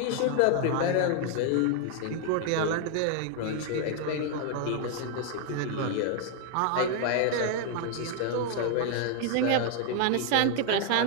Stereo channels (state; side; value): different; both; correlation 0.00